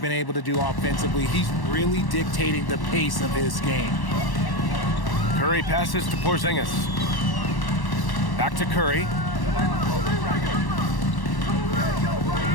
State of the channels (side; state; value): right; late; 1.1 ms